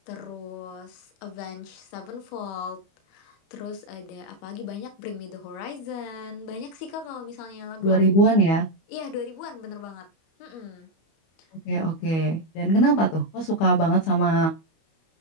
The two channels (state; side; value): late; right; 25 ms